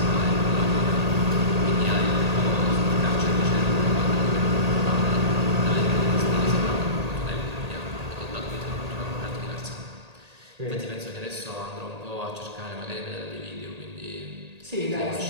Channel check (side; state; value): left; late; 1.8 ms